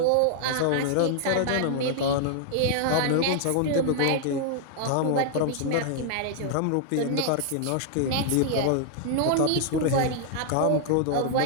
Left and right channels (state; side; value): different; both; correlation -0.01